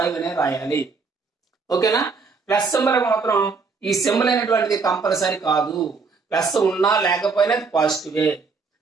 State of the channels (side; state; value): left; quieter; 4.7 dB